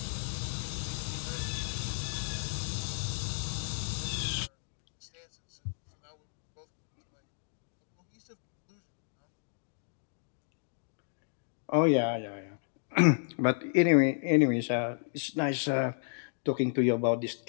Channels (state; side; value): silent; right; digital silence